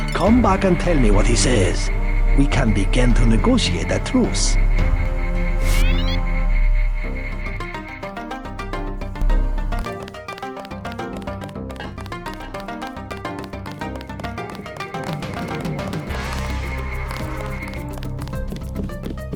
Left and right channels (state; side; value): identical; both; correlation 1.00